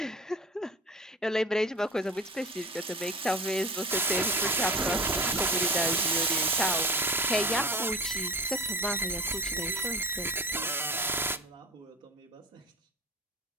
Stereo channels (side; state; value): both; normal; correlation 0.33